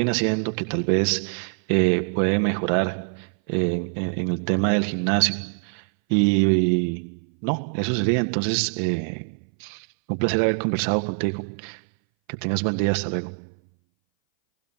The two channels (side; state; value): left; silent; 60 dB below the other